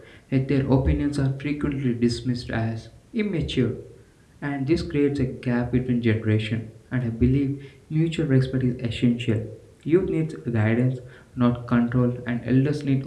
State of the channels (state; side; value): identical; both; correlation 1.00